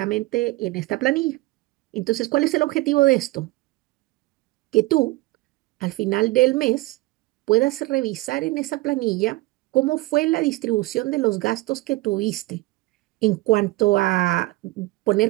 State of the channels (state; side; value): quieter; left; 20.3 dB